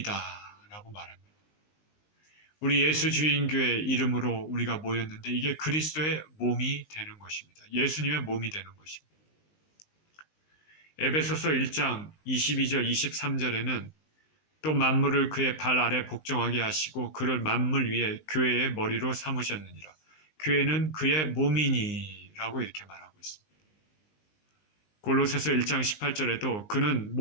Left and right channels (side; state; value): right; late; 19 ms